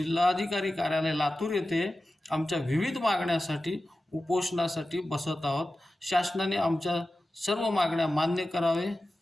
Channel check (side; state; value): both; normal; correlation 0.94